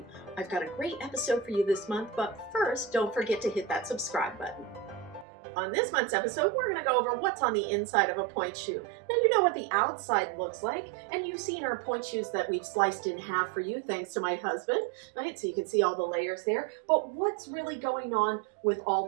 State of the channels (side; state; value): left; drops out; at 5.2 s